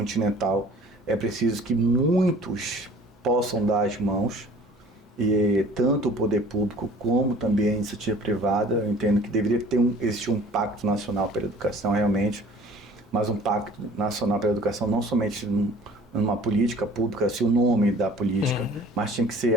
é preciso que muitos possam dar as mãos, e tanto o poder público como também a iniciativa privada. Eu entendo que deveria existir um pacto nacional pela educação realmente, mas um pacto nacional pela educação não somente numa política pública, assim, o nome da política, mas tinha que ser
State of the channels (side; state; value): both; normal; correlation 0.49